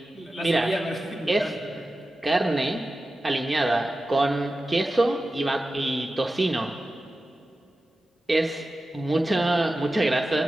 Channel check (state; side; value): normal; both; correlation 0.94